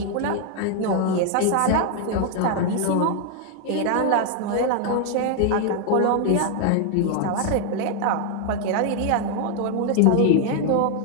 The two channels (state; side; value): different; both; correlation 0.00